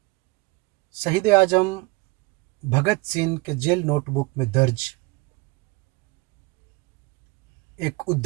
शहीद आजम भगत सिंह के जेल नोटबुक में दर्ज एक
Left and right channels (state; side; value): quieter; left; 24.8 dB